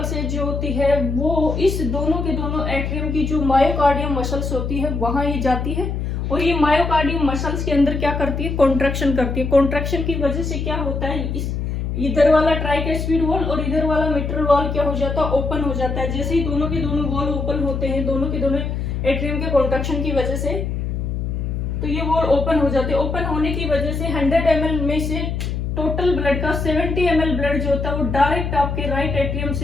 जो होती है वो इस दोनों के दोनों एट्रियम की जो मायोकार्डियम मसल्स होती है वहां ये जाती है, और ये मायोकार्डियम मसल्स के अंदर क्या करती है, कॉन्ट्रैक्शन करती है। कॉन्ट्रैक्शन की वजह से क्या होता है, इस इधर वाला ट्राइकैस्पिड वॉल और इधर वाला मिट्रल वॉल क्या हो जाता है, ओपन हो जाता है। जैसे ही दोनों के दोनों वॉल ओपन होते हैं, दोनों के दोनों एट्रियम के कॉन्ट्रैक्शन की वजह से, तो ये वॉल ओपन हो जाते हैं। ओपन होने की वजह से 100 ml में से टोटल ब्लड का 70 ml ब्लड जो होता है वो डायरेक्ट आपके राइट एट्रियम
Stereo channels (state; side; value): noise; left; hum, 2 dB below the sound